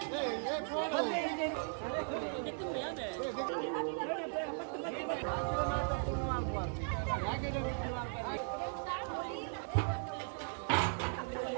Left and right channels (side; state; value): left; silent; 53 dB below the other